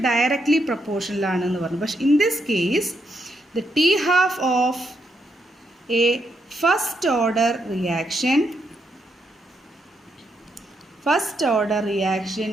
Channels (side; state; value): both; normal; correlation 0.79